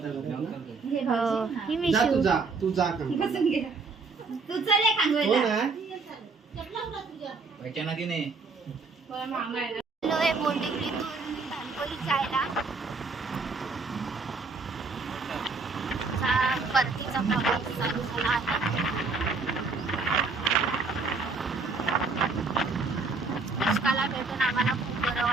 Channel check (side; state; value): left; quieter; 4.2 dB